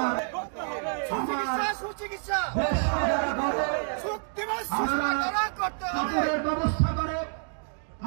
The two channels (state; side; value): silent; left; digital silence